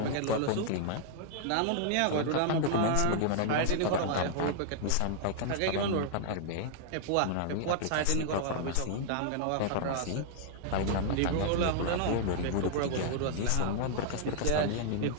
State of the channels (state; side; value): different; both; correlation 0.00